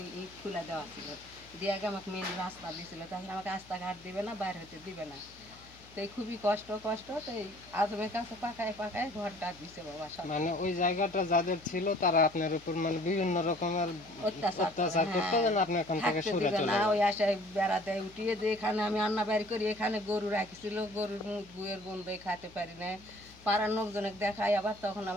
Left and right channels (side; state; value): left; noise; hum, 23 dB below the sound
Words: ইট খুলে দেওয়া ছিল, দিয়ে আগে আমাকে মেন রাস্তা দিয়েছিল, তাছাড়া আমাকে রাস্তাঘাট দিবে না, বাইরে হতে দিবে না। তো এই খুবই কষ্ট কষ্ট, তো এই আজমের কাছে পাকায় পাকায় ঘরটা দিছে বাবা সব। মানে ওই জায়গাটা যাদের ছিল তারা আপনার উপর মানে বিভিন্ন রকমের অত্যাচার করে, অত্যাচার করতো, হ্যাঁ, যেন আপনি এখান থেকে থাকতে সরে দিবে চলে না, যান। ওই আশায় বেড়া দেয় উঠিয়ে, যে এখানে আমি রান্না বাড়ি করি, এখানে গরু রাখিছিল, গরুর মুখ গুয়ের গন্ধে খাইতে পারি না, পাড়ার লোকজনকে দেখায়, আবার তখন